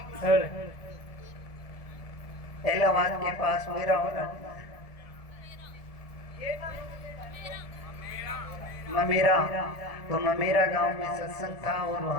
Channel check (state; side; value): late; right; 1.7 ms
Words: इलाहाबाद के पास ममेरा तो ममेरा गांव में सत्संग था और